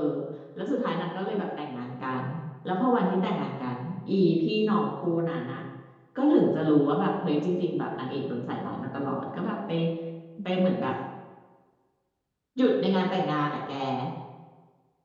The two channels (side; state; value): both; identical; correlation 1.00